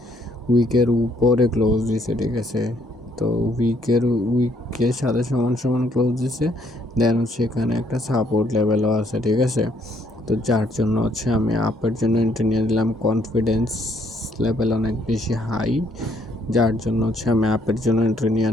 উইকের উপরে ক্লোজ দিছে, ঠিক আছে। তো উইকের সাথে সমান সমান ক্লোজ দিছে, দেন হচ্ছে এখানে একটা সাপোর্ট লেভেলও আছে, ঠিক আছে। তো যার জন্য হচ্ছে আমি আপের জন্য এন্ট্রি নিয়ে দিলাম, কনফিডেন্স লেভেল অনেক বেশি হাই, যার জন্য হচ্ছে আমি আপের জন্য এন্ট্রি নিয়ে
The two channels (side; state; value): both; normal; correlation 0.68